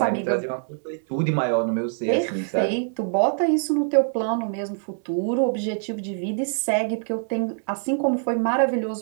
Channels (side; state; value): left; silent; digital silence